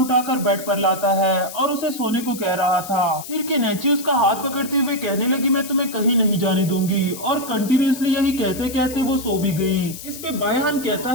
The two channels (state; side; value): noise; left; hiss, 12 dB below the sound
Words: बेड पर लाता है और उसे सोने को कह रहा था। फिर किनेची उसका हाथ पकड़ते हुए कहने लगी, मैं तुम्हें कहीं नहीं जाने दूंगी, और कंटिन्यूसली यही कहते कहते वो सो भी गई। इस पे बायहन कहता